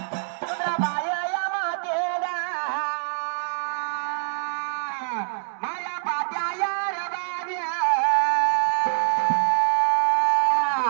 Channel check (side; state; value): left; silent; digital silence